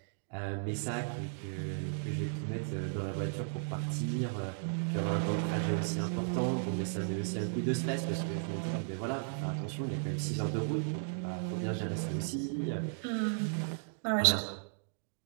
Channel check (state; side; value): silent; left; digital silence